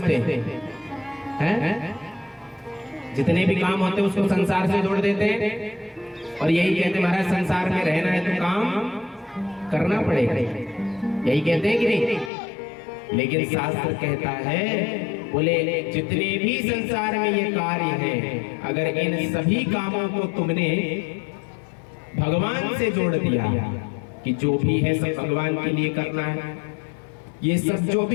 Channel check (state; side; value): drops out; right; at 12.3 s